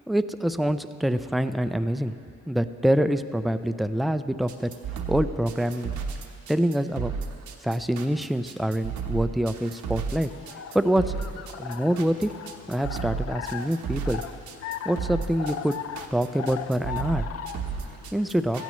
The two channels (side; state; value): both; normal; correlation 0.89